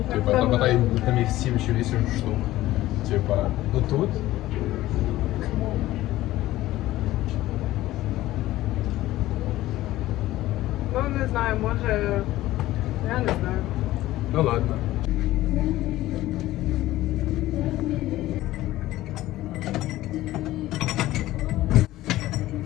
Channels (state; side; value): quieter; right; 15.9 dB